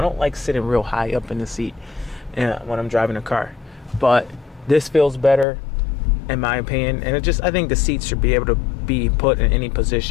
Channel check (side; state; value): right; drops out; at 5.5 s